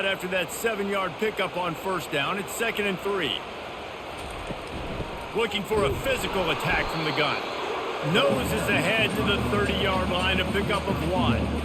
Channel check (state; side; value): identical; both; correlation 1.00